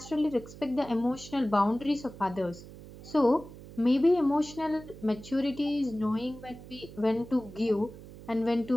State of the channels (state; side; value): noise; right; hum, 16 dB below the sound